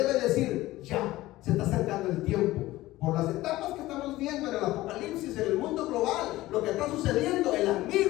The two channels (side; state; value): right; quieter; 17.2 dB